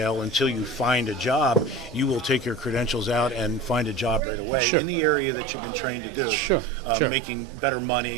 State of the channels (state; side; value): drops out; left; at 4.2 s